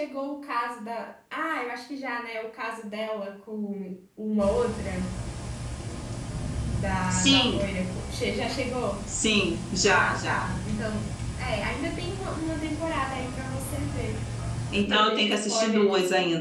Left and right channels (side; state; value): both; identical; correlation 1.00